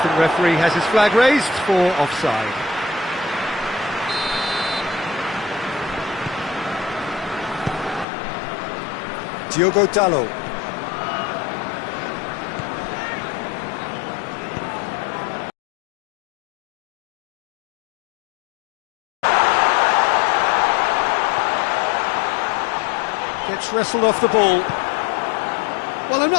referee has his flag raised for offside. Diogo Dalot. Gets wrestled off the ball. Well, I'm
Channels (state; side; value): drops out; right; at 8.1 s